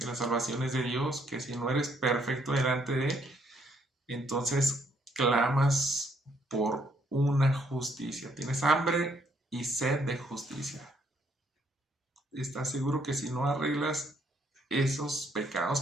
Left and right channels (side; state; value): both; normal; correlation 0.70